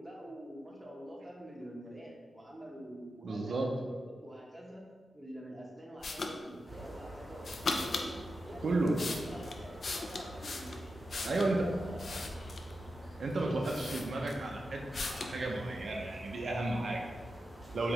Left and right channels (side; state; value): both; normal; correlation 0.89